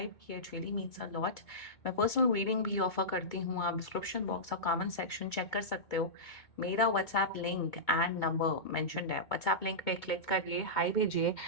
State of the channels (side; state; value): right; late; 2.3 ms